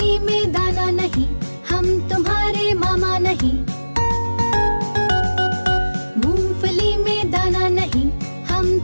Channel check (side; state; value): both; inverted; correlation -1.00